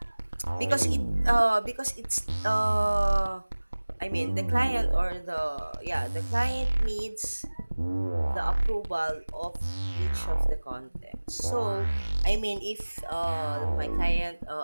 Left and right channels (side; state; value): both; inverted; correlation -1.00